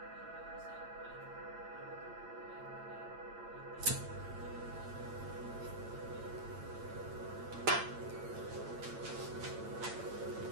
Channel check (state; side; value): late; left; 8.8 ms